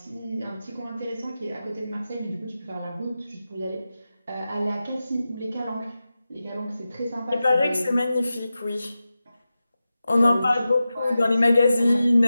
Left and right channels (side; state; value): both; inverted; correlation -0.93